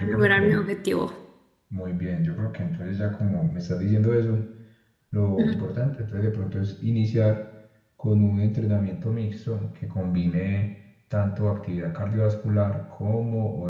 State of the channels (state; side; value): identical; both; correlation 1.00